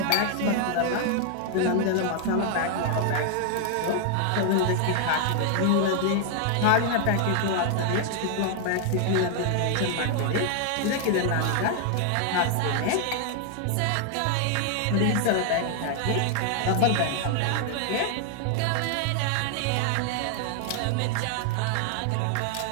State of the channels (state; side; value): different; both; correlation 0.00